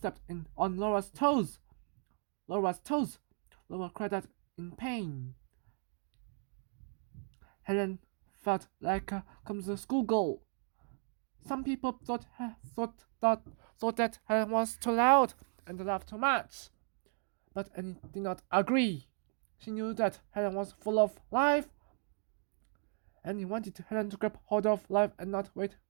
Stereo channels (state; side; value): silent; left; 54 dB below the other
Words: on Laura's toes. Laura's toes. Laura cried out in pain. Helen felt like a clumsy schoolgirl. Some people thought that Helen was too loud and laughed too much, but Annie did not agree. She knew that Helen was full of life, and he wanted Helen to grab hold of life and not wait